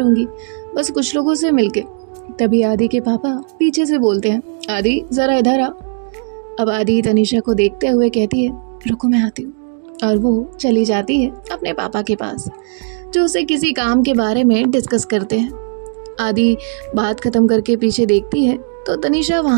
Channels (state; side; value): silent; left; digital silence